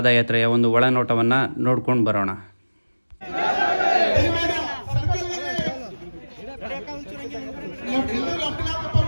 ಒಂದು ಒಳನೋಟವನ್ನು ನೋಡ್ಕೊಂಡು ಬರೋಣ.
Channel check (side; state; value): both; inverted; correlation -1.00